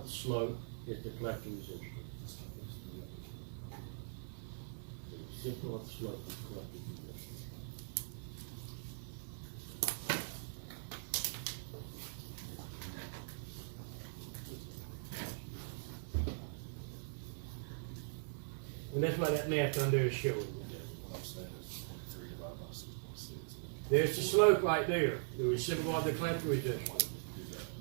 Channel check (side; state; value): left; silent; digital silence